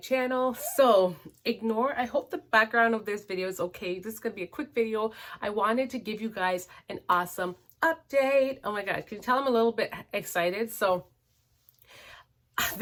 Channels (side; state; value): both; identical; correlation 1.00